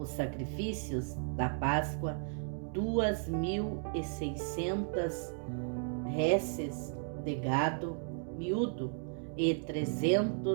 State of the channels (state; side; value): silent; left; 55 dB below the other